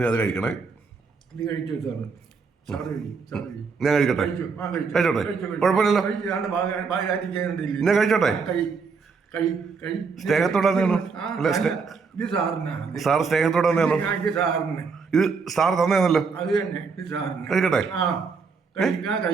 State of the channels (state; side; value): quieter; left; 5.0 dB